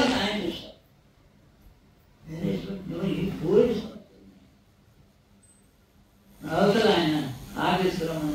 ఆయన చేస్తారు. అవతల ఆయన ఆఫీసులో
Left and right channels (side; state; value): both; identical; correlation 1.00